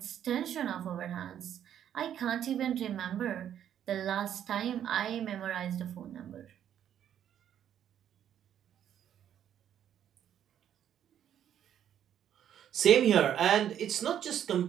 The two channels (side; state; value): left; quieter; 10.0 dB